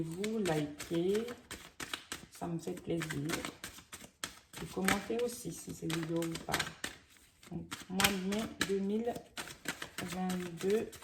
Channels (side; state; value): both; identical; correlation 1.00